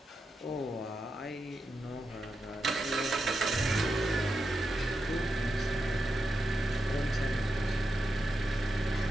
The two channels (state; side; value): normal; both; correlation 0.87